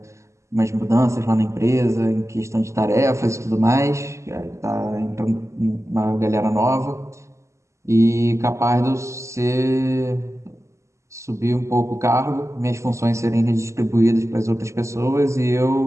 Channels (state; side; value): late; left; 0.14 ms